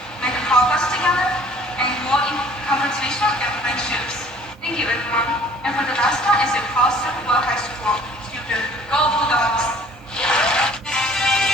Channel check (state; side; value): normal; both; correlation 0.53